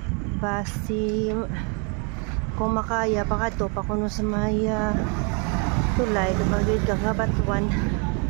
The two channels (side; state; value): left; quieter; 35.6 dB